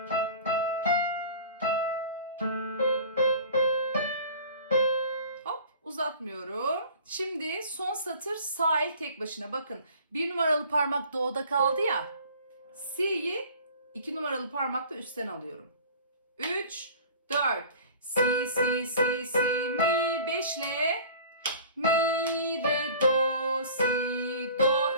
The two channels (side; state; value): both; inverted; correlation -0.44